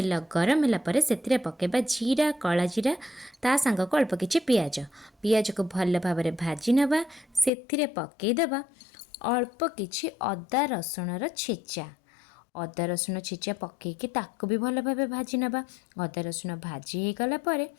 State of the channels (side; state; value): right; drops out; at 7.5 s